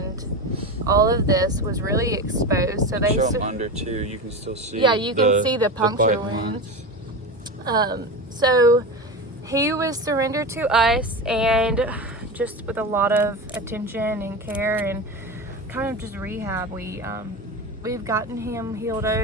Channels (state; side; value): normal; both; correlation 0.23